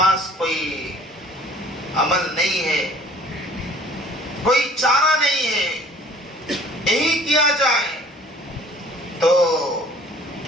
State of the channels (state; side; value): normal; both; correlation 0.52